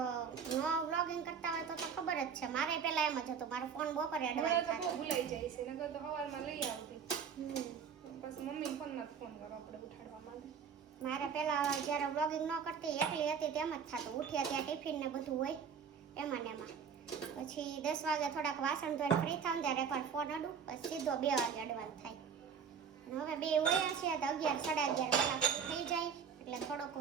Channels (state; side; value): quieter; left; 6.7 dB